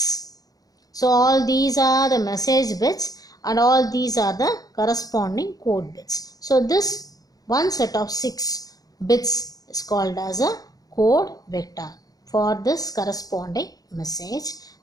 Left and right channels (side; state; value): right; late; 0.18 ms